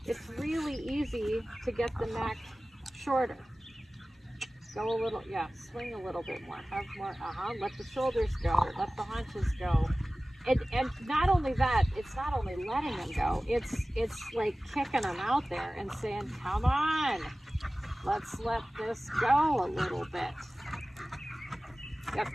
it's really easy to get the neck shorter. Go a little, yeah, swing a little bit more. Have more, let the shoulders go, let the haunches go. And not only that, it's not only letting them go, it's like kicking them out there and saying, come on, let's let this go a little bit. Yep,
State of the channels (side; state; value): both; normal; correlation 0.97